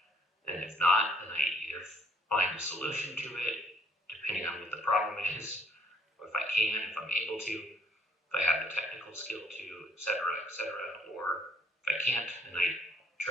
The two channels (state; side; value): normal; both; correlation 0.62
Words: And if not, then I either find a solution to it, depending on what the problem is, or if I'm able to, if I have the technical skill to, et cetera, or if I can't, then I